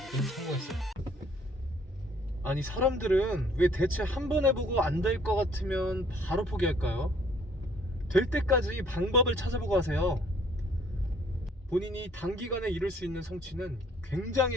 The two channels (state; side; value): normal; both; correlation 0.61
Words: 성공했어요. 아니, 사람들은 왜 대체 한 번 해보고 안 될 것 같으면 바로 포기할까요? 될 때까지 방법을 찾아보고 하세요. 본인이 단기간에 이룰 수 있는 성취는